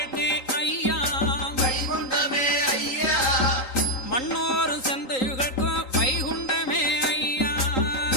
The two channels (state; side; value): late; right; 3.8 ms